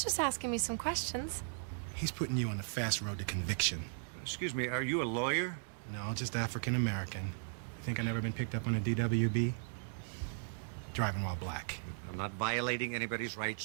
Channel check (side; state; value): left; silent; digital silence